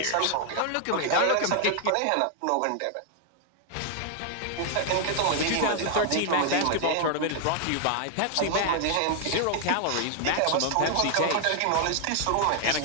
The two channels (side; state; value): both; different; correlation 0.00